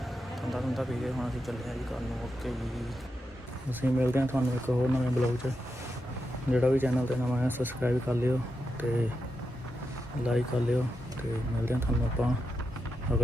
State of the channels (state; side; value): normal; both; correlation 0.87